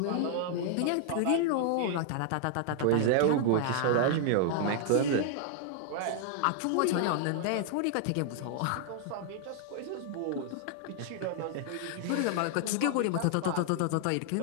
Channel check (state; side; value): different; both; correlation -0.01